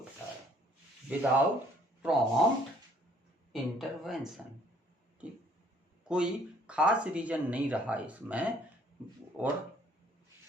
है, विदाउट प्रॉम्प्ट इंटरवेंशन। ठीक, कोई खास रीजन नहीं रहा इसमें, और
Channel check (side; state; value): both; normal; correlation 0.60